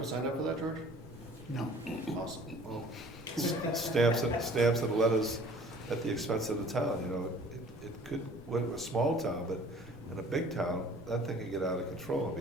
signed up for that, George? No. Awesome. well, stamps and letters at the expense of the town, you know. It could, we're a small town, but in a big town, that thing can get out of control and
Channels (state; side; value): normal; both; correlation 0.51